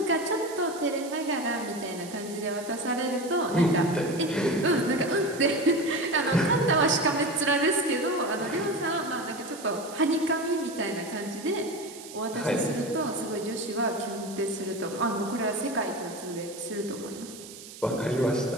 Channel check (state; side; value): noise; right; hiss, 15 dB below the sound